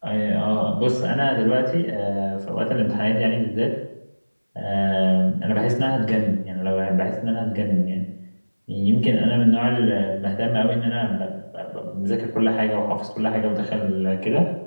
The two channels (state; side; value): inverted; both; correlation -1.00